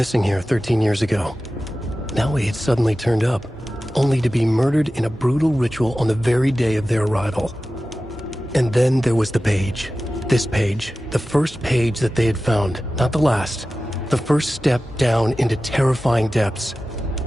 here 13 years ago. Now he had suddenly turned up, only to be murdered in a brutal ritual on the very day of their arrival. And then there was the page. This page, the first page that they had found, not the last. The first step down into terrifying depths.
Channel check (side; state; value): both; normal; correlation 0.95